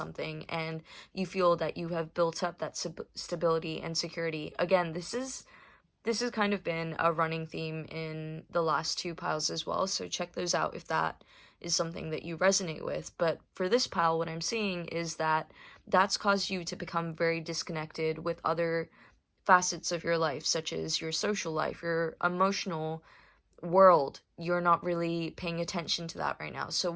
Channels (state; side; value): identical; both; correlation 1.00